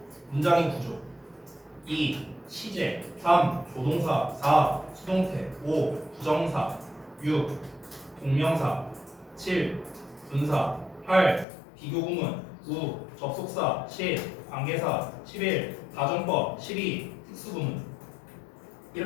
문장의 구조, 2. 시제, 3. 조동사, 4. 수동태, 5. 부정사, 6. 동명사, 7. 분사, 8. 비교구문, 9. 접속사, 10. 관계사, 11. 가정법, 12. 특수구문.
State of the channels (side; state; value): right; drops out; at 11.5 s